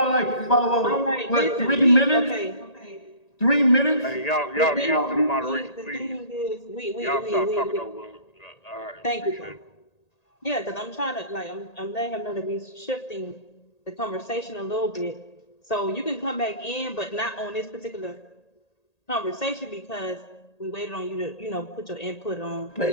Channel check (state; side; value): late; right; 1.8 ms